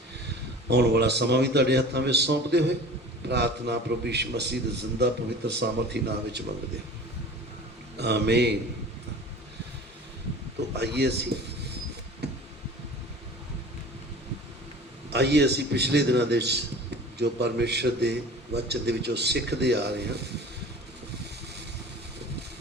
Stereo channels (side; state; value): both; normal; correlation 0.40